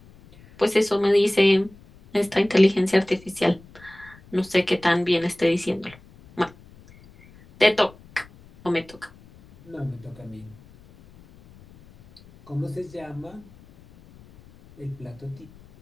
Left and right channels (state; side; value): noise; left; rumble, 24 dB below the sound